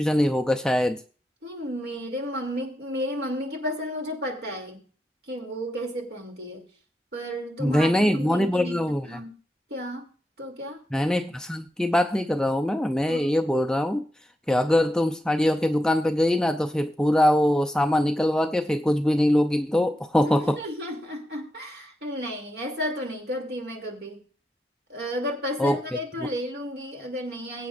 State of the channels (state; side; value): normal; both; correlation 0.86